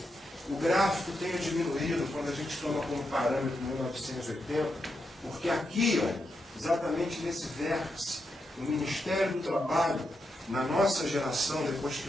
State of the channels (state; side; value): normal; both; correlation 0.84